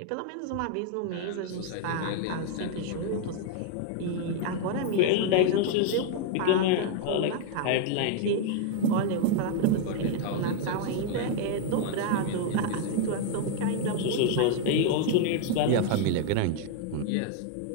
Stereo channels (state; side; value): different; both; correlation 0.00